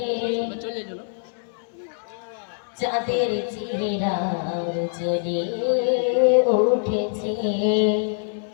চাঁদের চেহারার জ্বলে উঠেছে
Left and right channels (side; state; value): right; silent; digital silence